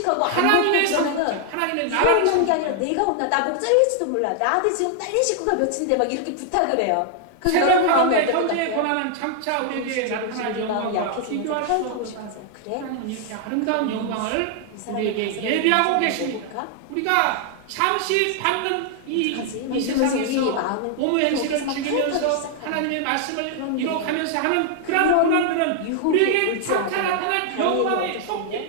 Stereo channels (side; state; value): both; different; correlation 0.00